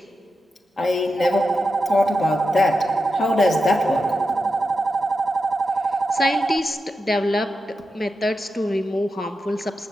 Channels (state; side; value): normal; both; correlation 0.89